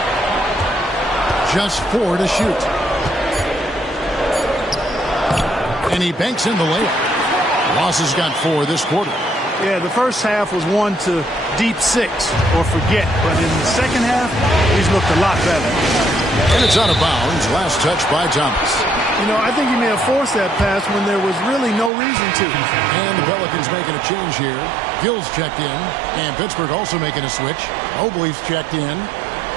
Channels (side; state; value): left; drops out; at 21.9 s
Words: Just 4 to shoot. And he banks in the layup. Ross has got 4 this quarter. Yeah, the first half was 1 to deep 6 or forget. But in the second half, he's looked a lot better. And it's out of bounds. Last touch by Thomas. You know, I think he may have forced that pass when there was really no reason to. And the Pelicans making a change here. Gill's checked in. And Pittsburgh also making a switch. Mobley's checked in.